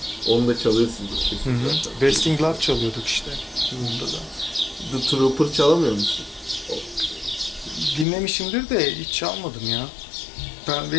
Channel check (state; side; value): drops out; right; at 8.1 s